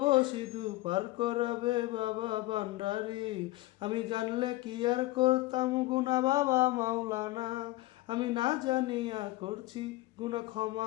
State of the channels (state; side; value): quieter; right; 18.8 dB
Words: সিধু পার করাবে বাবা ভান্ডারি। আমি জানলে কি আর করতাম গুনাহ বাবা মাওলানা, আমি না জানিয়া করছি গুনাহ